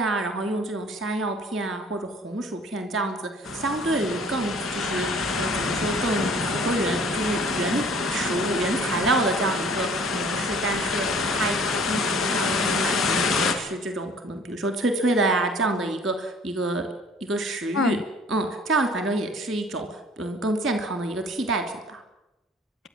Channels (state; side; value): normal; both; correlation 0.52